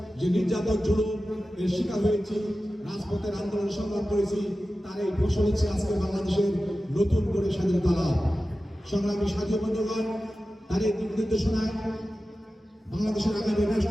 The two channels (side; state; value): both; normal; correlation 0.94